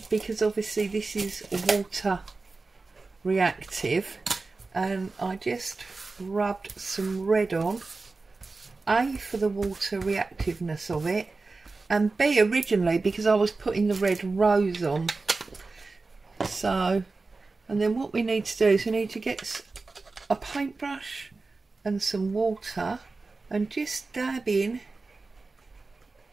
because obviously this is water reactive, and I just rubbed some red on, A, for the water reactiveness of it, and B, originally because I was putting the red rose on. So, and then what we need to do is we need to get a paintbrush and some water and just dab in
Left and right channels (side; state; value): left; quieter; 3.8 dB